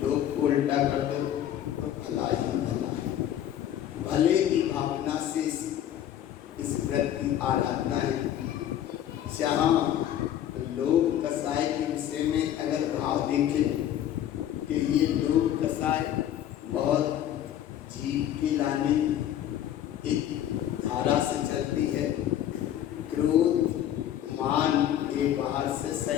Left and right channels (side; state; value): right; quieter; 11.0 dB